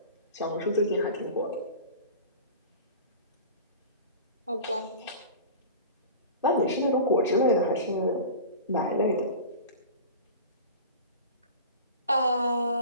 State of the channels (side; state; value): both; inverted; correlation -0.36